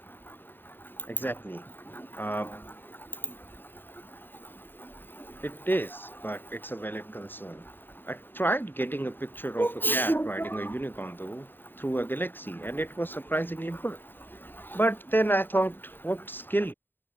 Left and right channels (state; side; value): late; right; 0.094 ms